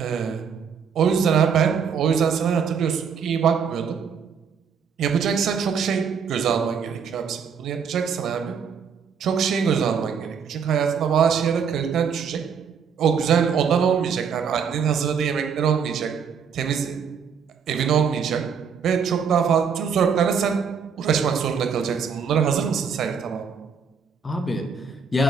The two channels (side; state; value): left; quieter; 6.6 dB